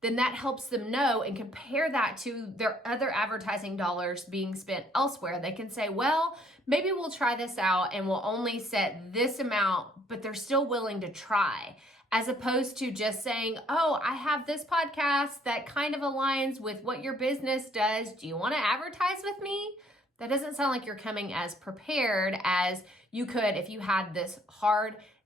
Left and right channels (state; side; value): normal; both; correlation 0.63